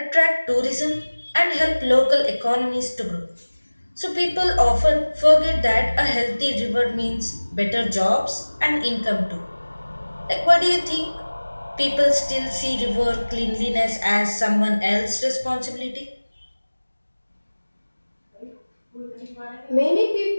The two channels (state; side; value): inverted; both; correlation -1.00